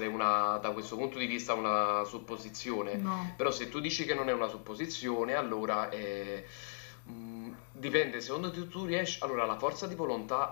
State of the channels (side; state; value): right; silent; digital silence